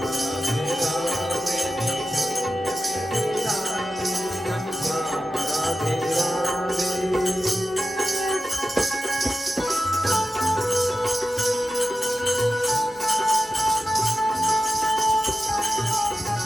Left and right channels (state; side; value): normal; both; correlation 0.92